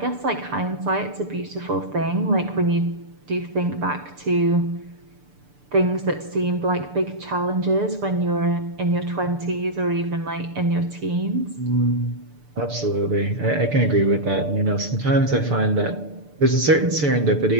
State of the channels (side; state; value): left; late; 6.8 ms